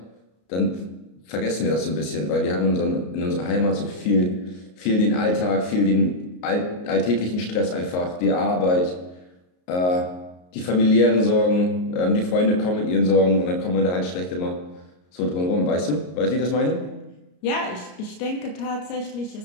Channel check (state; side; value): late; right; 33 ms